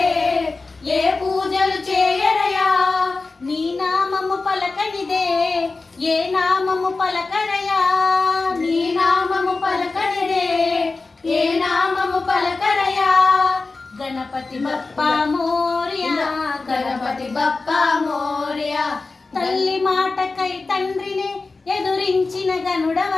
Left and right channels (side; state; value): right; quieter; 3.8 dB